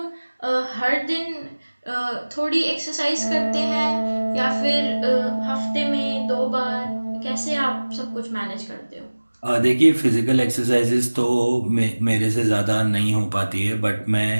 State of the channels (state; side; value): inverted; both; correlation -1.00